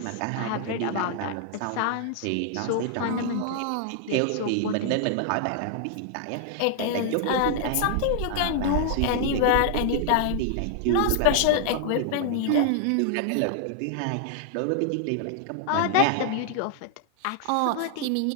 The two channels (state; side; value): different; both; correlation -0.01